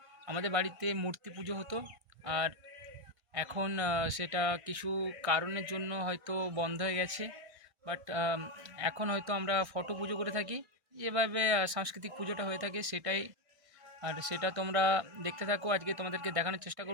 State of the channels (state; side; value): late; left; 1.6 ms